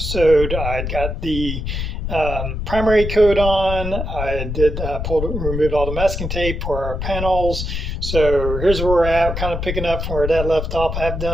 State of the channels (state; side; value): noise; left; rumble, 4 dB below the sound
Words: I got the primary coat on. I did remove all the masking tape for our panels. So here's where we're at, kind of picking up from where that left off. I've